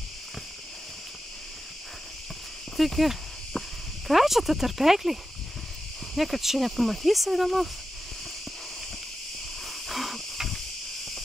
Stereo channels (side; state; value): both; normal; correlation 0.91